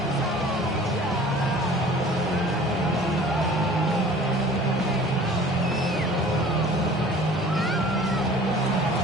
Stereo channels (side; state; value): both; normal; correlation 0.47